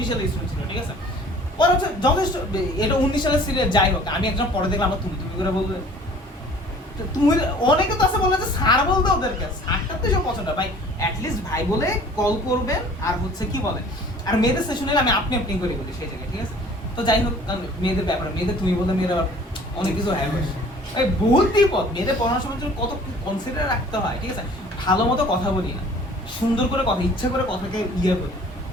সালে স্টুডেন্ট ছিল, ঠিক আছে? ও পরে হচ্ছে যথেষ্ট, এটা 19 সালের সিরিয়াল যাই হোক, আমি একজন পরে দেখলাম আমরা তুমি তুমি করে বলবে, তো তুমি অনেকে তো আছে বলে যে স্যার বলতে ওদেরকে, স্যারটা তো সব পছন্দ ভাই, অ্যাটলিস্ট ভাই বলে কল করবেন। আর হচ্ছে কি বলে, আর মেয়েদের সেশন হলে আমি আপনি আপনি করে বলি সেই জায়গায়, ঠিক আছে। তো যাই হোক, কারণ মেয়েদের ব্যাপারে, মেয়েদের তুমি বলতে মেয়েরা আবার অনেক কিছু হ্যাঁ বসে এই বহুত বিপদ। মেয়েদের পড়ানোর সময় জন্য কত কনসিডার রাখতে হয়, ঠিক আছে। ভালো মতো কথা বলি না, সুন্দর করে কথা, ইচ্ছা করে কথাকে ইয়ে করি,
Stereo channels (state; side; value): normal; both; correlation 0.50